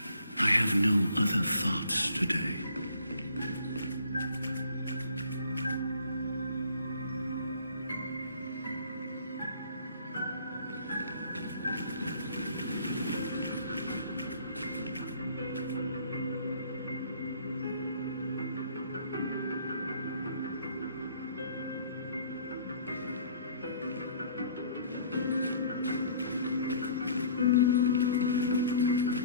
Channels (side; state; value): both; inverted; correlation -0.54